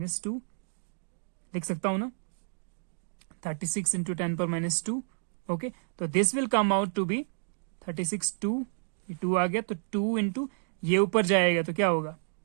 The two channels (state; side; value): silent; left; digital silence